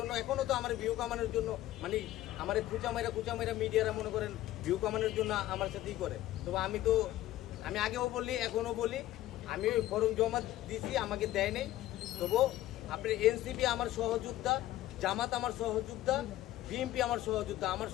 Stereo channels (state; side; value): quieter; right; 14.8 dB